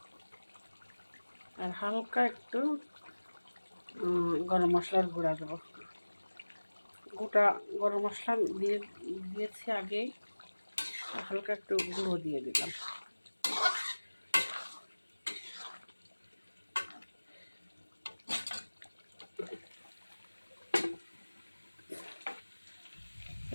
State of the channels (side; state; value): both; inverted; correlation -1.00